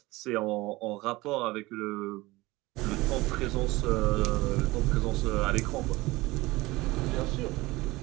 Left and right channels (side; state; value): left; quieter; 20.6 dB